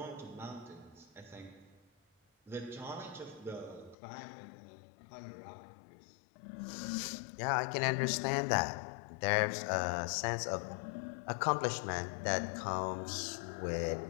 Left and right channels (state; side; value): drops out; right; at 4.0 s